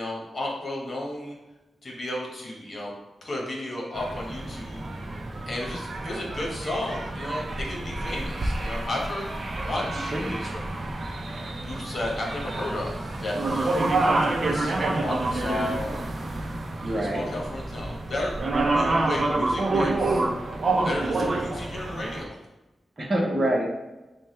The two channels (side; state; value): both; normal; correlation 0.88